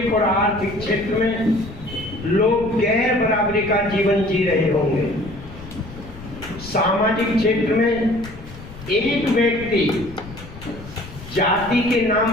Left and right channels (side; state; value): left; noise; rumble, 15 dB below the sound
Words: और आर्थिक क्षेत्र में लोग गैर बराबरी का जीवन जी रहे होंगे। सामाजिक क्षेत्र में एक व्यक्ति जाति के